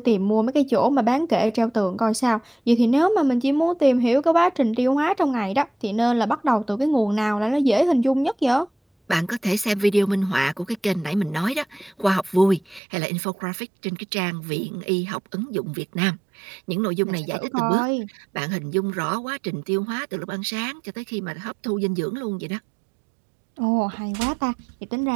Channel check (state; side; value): drops out; left; at 12.8 s